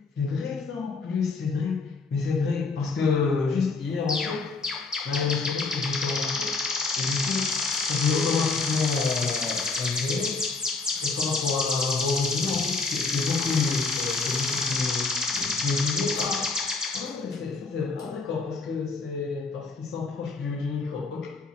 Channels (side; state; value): right; quieter; 4.0 dB